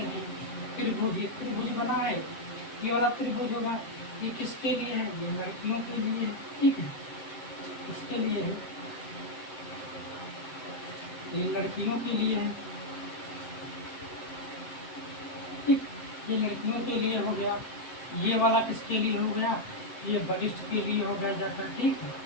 हैं। त्रिभुज, एक त्रिभुज बना है, ये वाला त्रिभुज होगा। ये किसके लिए है? ये लड़कियों के लिए है, ठीक है, इसके लिए है, ये लड़कियों के लिए है, ठीक, ये लड़कियों के लिए हो गया। ये वाला किसके लिए हो गया? ये बलिष्ठ के लिए हो गया जाकर, ठीक है,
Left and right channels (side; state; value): right; late; 7.7 ms